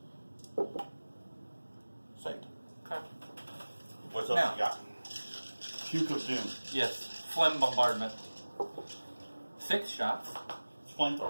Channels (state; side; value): inverted; both; correlation -1.00